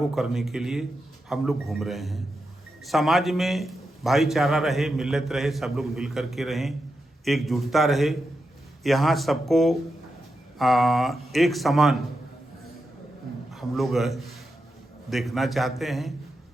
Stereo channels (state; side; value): normal; both; correlation 0.87